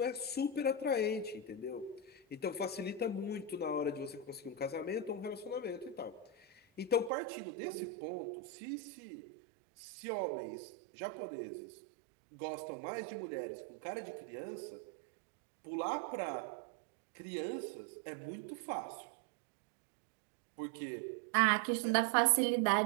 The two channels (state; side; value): drops out; left; at 7.1 s